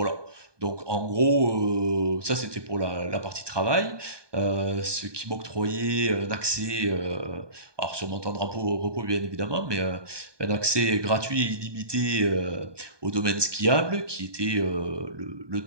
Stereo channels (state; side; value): late; left; 1.2 ms